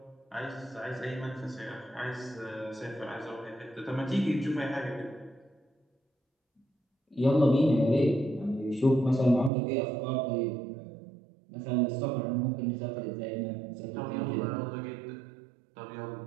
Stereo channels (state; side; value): drops out; left; at 9.5 s